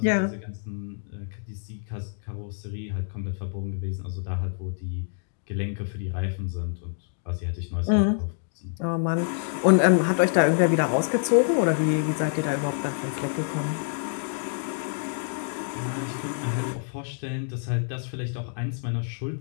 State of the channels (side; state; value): right; silent; digital silence